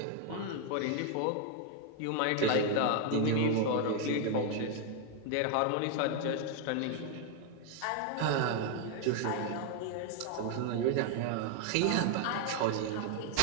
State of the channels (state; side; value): different; both; correlation 0.00